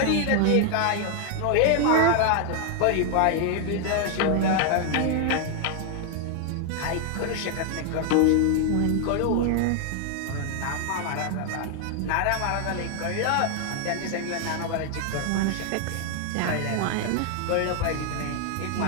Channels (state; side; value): different; both; correlation 0.00